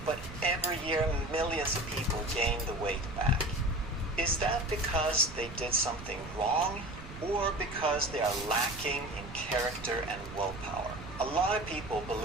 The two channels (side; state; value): right; noise; rumble, 13 dB below the sound